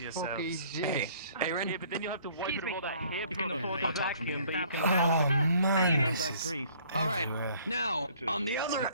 yourselves. Hey, Aaron. Yeah, but then you'll have to wipe it of all that hair You can product. afford I'll to talk from here. Oh, man. All right. Now, on the other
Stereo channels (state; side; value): inverted; both; correlation -0.58